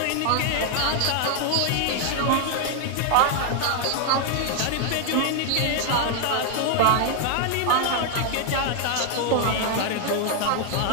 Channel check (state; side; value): different; both; correlation 0.00